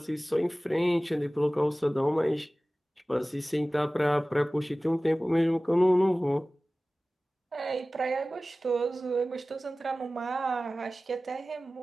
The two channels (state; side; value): normal; both; correlation 0.97